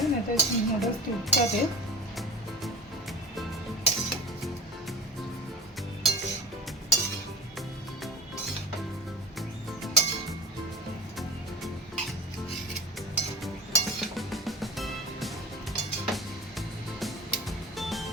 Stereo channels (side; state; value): both; normal; correlation 0.36